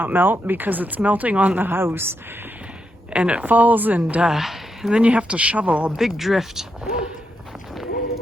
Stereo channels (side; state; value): both; normal; correlation 0.82